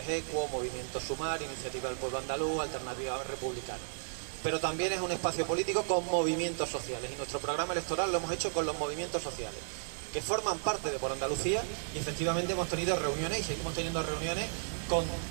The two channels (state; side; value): silent; left; digital silence